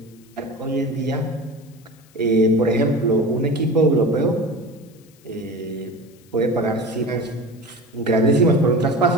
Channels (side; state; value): left; noise; hiss, 29 dB below the sound